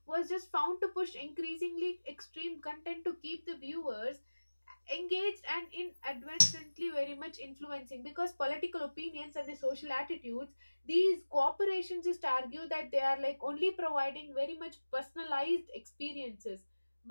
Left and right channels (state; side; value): inverted; both; correlation -1.00